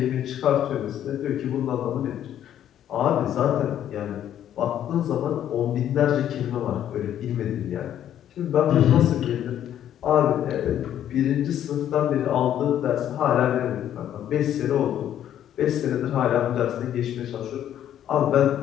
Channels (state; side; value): quieter; right; 10.8 dB